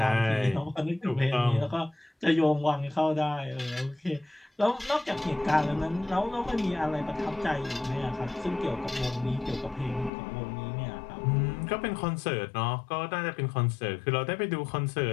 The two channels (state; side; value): drops out; right; at 10.1 s